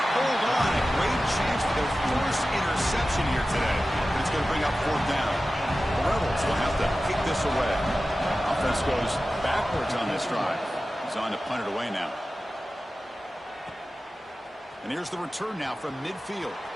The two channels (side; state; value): both; normal; correlation 0.95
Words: hold on. A great chance for their first interception here today. But it's going to bring up 4th down. The Rebels will have to kick this away. Offense goes backwards on this drive. He's on to punt it away now. And here's the return now from midfield.